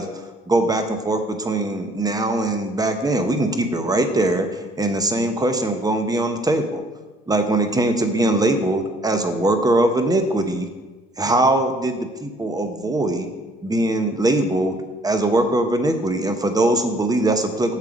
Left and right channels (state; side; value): normal; both; correlation 0.60